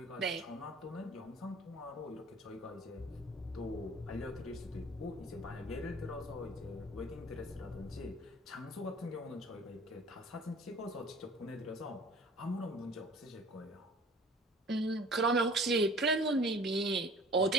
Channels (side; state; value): both; normal; correlation 0.47